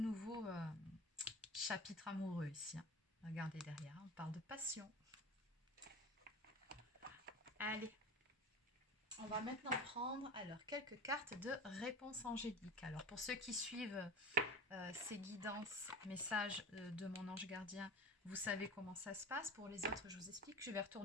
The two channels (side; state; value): both; normal; correlation 0.34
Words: chapitre amoureux ici. Regardez derrière, on parle de passion. Allez, on va maintenant prendre alors quelques cartes de réponse angélique. Alors pour ceux qui suivent ces guidances, messages de mon ange gardien, vous savez comment ça se passe. Pour les autres, je vous explique. Je vais